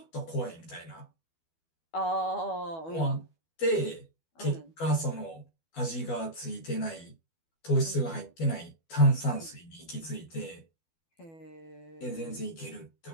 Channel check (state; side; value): late; right; 12 ms